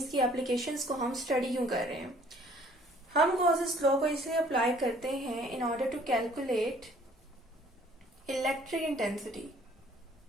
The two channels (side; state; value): both; normal; correlation 0.57